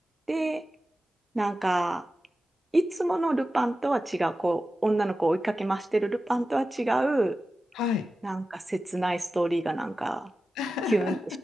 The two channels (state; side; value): normal; both; correlation 0.93